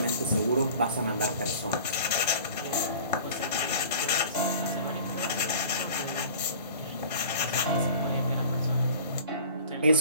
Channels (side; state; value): both; inverted; correlation -0.44